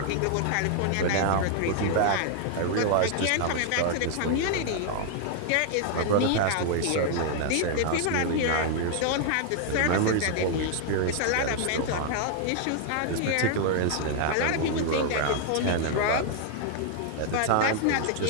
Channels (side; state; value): both; different; correlation 0.00